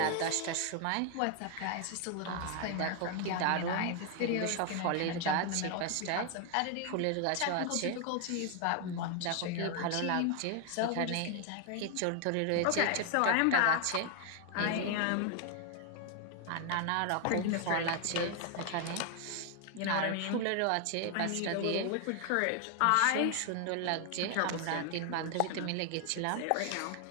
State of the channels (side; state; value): both; different; correlation 0.00